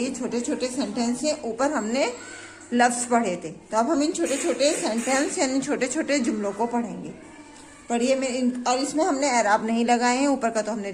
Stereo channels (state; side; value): identical; both; correlation 1.00